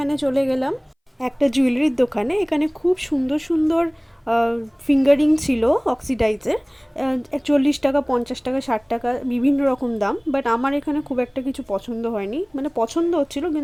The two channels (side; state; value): both; identical; correlation 1.00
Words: চলে গেলাম একটা জুয়েলারির দোকানে। এখানে খুব সুন্দর সুন্দর ফিঙ্গারিং ছিল অক্সিডাইজের। 40 টাকা, 50 টাকা, 60 টাকা, বিভিন্ন রকম দাম। বাট আমার এখানে খুব একটা কিছু পছন্দ হয়নি, মানে পছন্দ হচ্ছিল